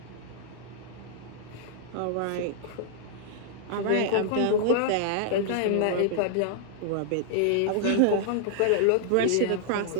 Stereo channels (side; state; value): both; different; correlation -0.01